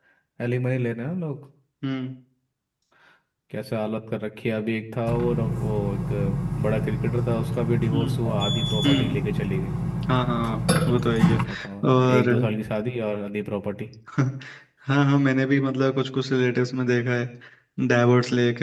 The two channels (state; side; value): identical; both; correlation 1.00